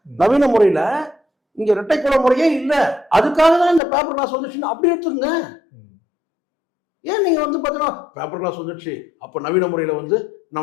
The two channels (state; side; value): drops out; right; at 3.8 s